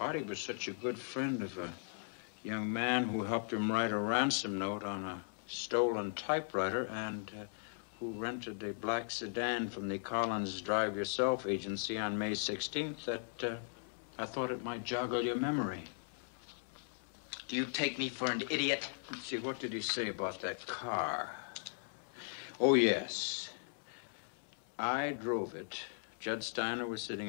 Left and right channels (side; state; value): right; silent; 52 dB below the other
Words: was such a good friend of a young man who helped him write a ransom note on a stolen typewriter and who rented a black sedan from the Collins Drive Yourself agency on May 16th that I thought it might joggle your memory. Do you take me for an idiot? Let's see, what did he say about that car? Oh, yes. I drove it. Judd Steiner was sitting